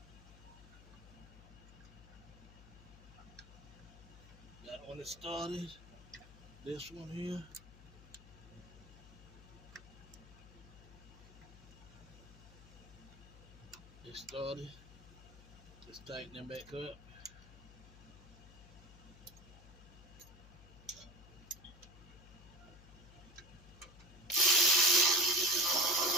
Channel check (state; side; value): noise; left; hum, 18 dB below the sound